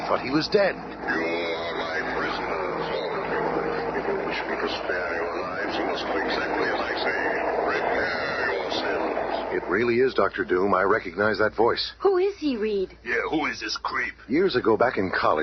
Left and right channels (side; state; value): both; identical; correlation 1.00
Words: thought he was dead. You are my prisoners, all of you. If you wish me to spare your lives, you must do exactly as I say. Prepare yourselves. It really is Dr. Doom. I recognize that voice. Who is he, Reed? Yeah, who is this creep? Years ago, back in